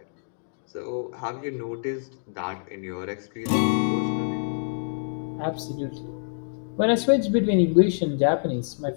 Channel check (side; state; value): right; silent; digital silence